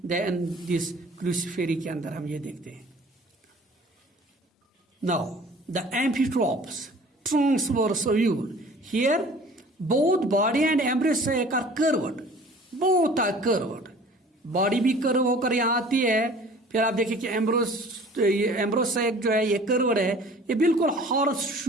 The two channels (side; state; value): both; normal; correlation 0.48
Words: Then this Cruciferae के अंदर हम ये देखते हैं. Now the amphitropous, transverse ovule. Here both body and embryo sac are curved. Both are curved. Body भी कर्व होकर यहाँ आती है. फिर आप देखिए कि एम्ब्रोसेक जो है ये कर्व्ड है. ये बिल्कुल हॉर्स